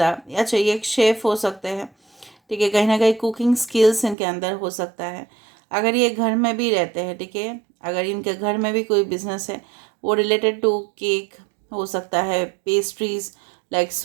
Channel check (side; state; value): left; drops out; at 4.2 s